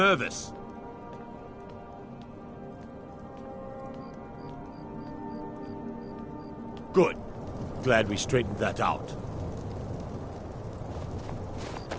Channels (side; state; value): both; identical; correlation 1.00